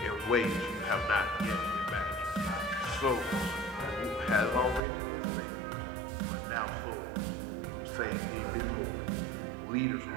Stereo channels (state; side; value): drops out; left; at 4.8 s